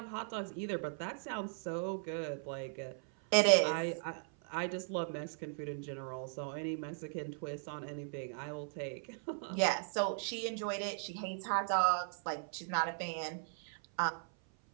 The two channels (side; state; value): left; silent; 53 dB below the other